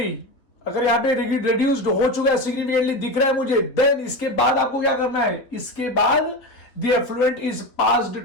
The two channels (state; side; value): late; right; 3.5 ms